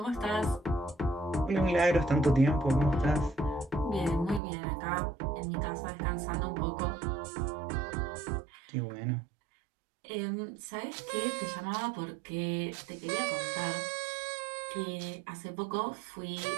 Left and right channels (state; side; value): drops out; left; at 4.4 s